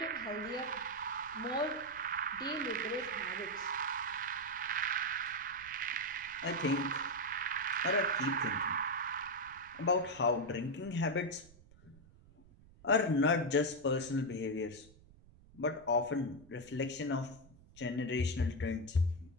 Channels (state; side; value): noise; right; rumble, 24 dB below the sound